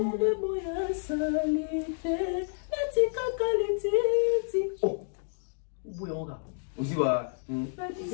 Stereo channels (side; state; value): right; silent; digital silence